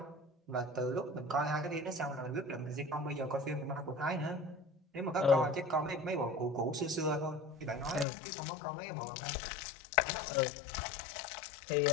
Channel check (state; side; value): drops out; right; at 8.1 s